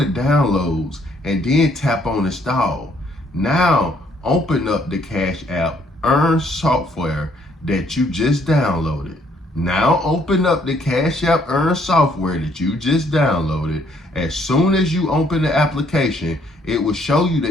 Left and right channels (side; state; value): both; normal; correlation 0.67